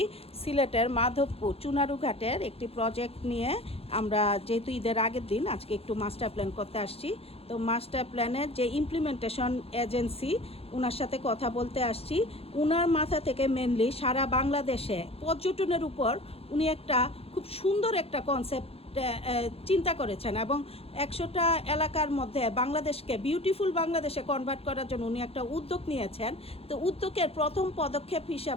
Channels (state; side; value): late; right; 0.29 ms